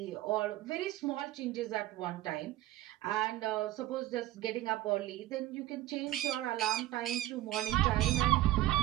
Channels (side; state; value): left; quieter; 15.5 dB